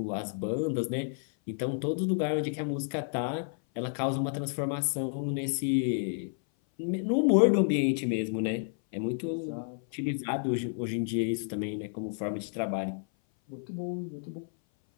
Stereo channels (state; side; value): silent; right; 56 dB below the other